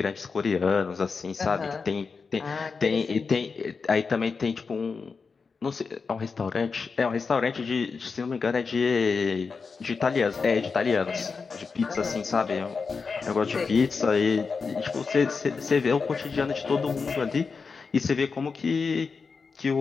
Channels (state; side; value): quieter; right; 5.0 dB